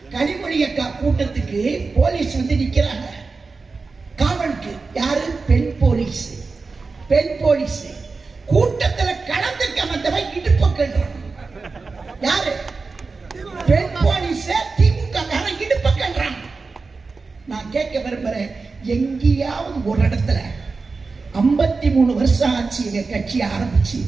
கனிமொழி அக்கா கூட்டத்துக்கு போலீஸ் வந்து நிக்கிறாங்க காவலுக்கு. யாரு? பெண் போலீஸ். பெண் போலீஸ் கூட்டத்துல கலந்துக்க வந்தவன் இடுப்பு கல்றான். யாரு? பெண் போலீஸ். திமுக இடுப்பு கல்றான். நான் கேட்க விரும்புறேன், எங்கேயாவது ஒரு இடத்துல 53 வருஷம் ஆச்சு எங்க கட்சி ஆரம்பிச்சு,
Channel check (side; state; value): left; quieter; 4.2 dB